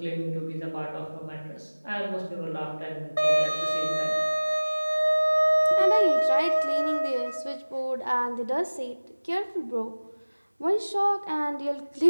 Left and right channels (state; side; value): inverted; both; correlation -1.00